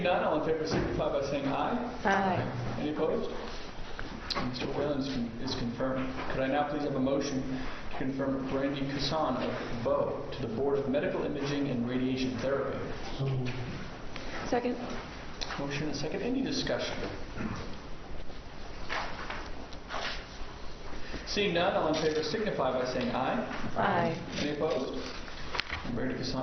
none, all in favor signify by saying aye. Aye. Any opposed? And Mr. Whalen is confirmed. Could I now please have a motion to confirm Brandy Casson of Bow to the Board of Medical Imaging and Radiation Therapy? So moved. Second. Motion and second. Any discussion? Seeing none, all in favor signify by saying aye. Aye. Any opposed? And Brandy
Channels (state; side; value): identical; both; correlation 1.00